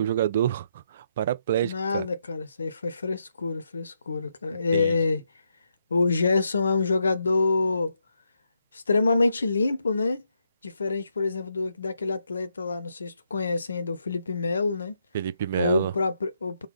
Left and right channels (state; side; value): inverted; both; correlation -0.79